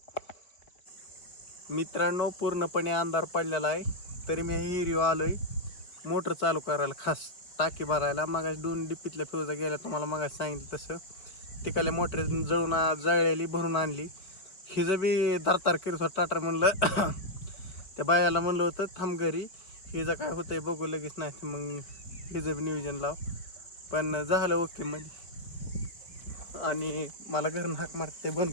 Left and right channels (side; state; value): right; late; 4.5 ms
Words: मित्रांनो पूर्णपणे अंधार पडलेला आहे तरी मी हिरीव आलोय मोटर चालू करायला, खास टाकी भरायला. मागाशी 2 डिप्पीतल्या फ्यूजा गेल्या तुम्हाला मागाशी सांगितलं तसं. तिकडल्या मोटर जळलेली भरून आणली. हिचं बी दारतार करत होतं टाटर. म्हणलं त्या बायाला म्हणलं होतं थांब घरी, हिचं काय होतंय बघू लगेच, नाही मग हिचं बी नियोजन लाव. पण झालं ओके मध्ये. आणि मला घरून हाक मारते बंद